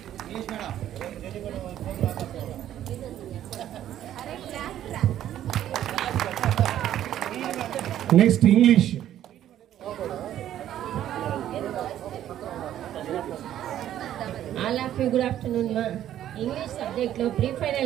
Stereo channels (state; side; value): quieter; left; 11.7 dB